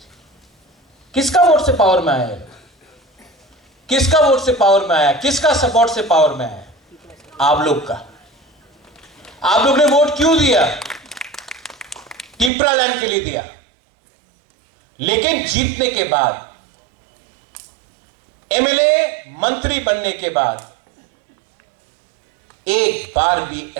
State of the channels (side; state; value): left; drops out; at 12.5 s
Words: किसका वोट से पावर में आया है? किसका वोट से पावर में आया? किसका सपोर्ट से पावर में आया? आप लोग का। आप लोग ने वोट क्यों दिया? टिपरालैंड के लिए दिया। लेकिन जीतने के बाद, एमएलए मंत्री बनने के बाद एक बार भी